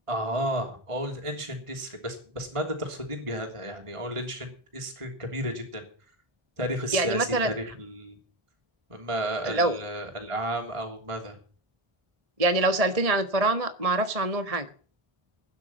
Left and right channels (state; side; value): late; left; 1.5 ms